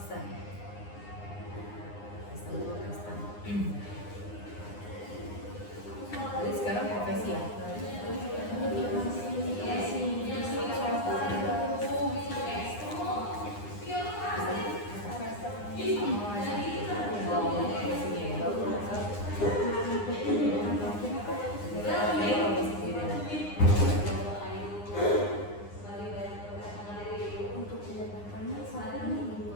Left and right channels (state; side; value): late; right; 9.8 ms